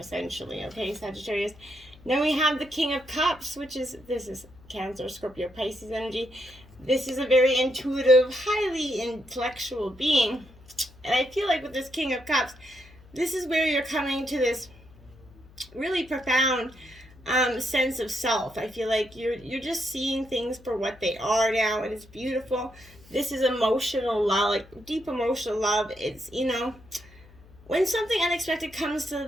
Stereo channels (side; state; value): left; noise; hum, 24 dB below the sound